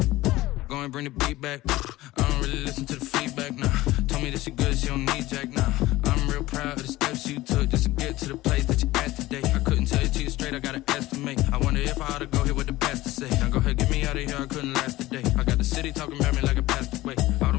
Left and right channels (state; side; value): quieter; right; 17.7 dB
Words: Go and bring the beat back. I don't really listen to the feedback, nah. Told me that she good, she don't need jack, nah. I'm real proud of the steps you took just to get to the place that you at today. I couldn't tell you to you straight, I gotta estimate. I wonder if I ought to go here with the pastor say. Now go ahead, get me out of here, I couldn't last a day. I got the city talking about me like I passed away.